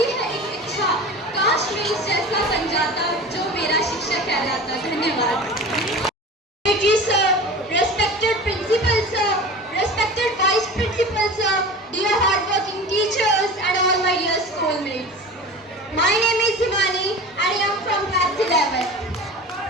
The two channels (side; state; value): both; normal; correlation 0.35